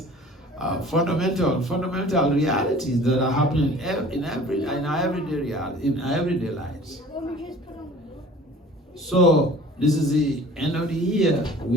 fundamental realities that are happening in our everyday lives. So this is the end of the year.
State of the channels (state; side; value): normal; both; correlation 0.46